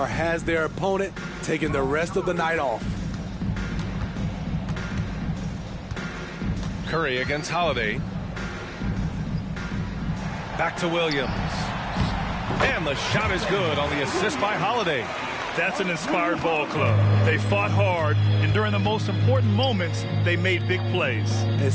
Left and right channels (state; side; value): identical; both; correlation 1.00